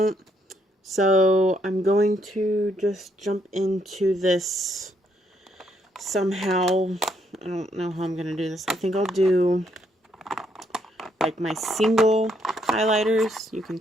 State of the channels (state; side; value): normal; both; correlation 0.73